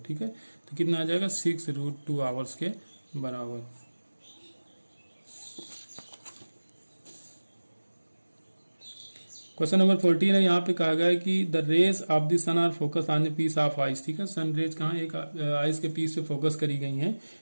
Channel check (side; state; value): both; inverted; correlation -1.00